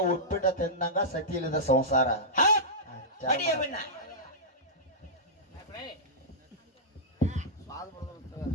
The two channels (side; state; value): both; normal; correlation -0.13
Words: ಉಪ್ಪಿಟ್ಟ ತಿನ್ನಂಗ ಸತಿ ಇಲ್ಲದ ಸಂಸಾರ ಅಡಿಯ ಬಿಣ್ಣ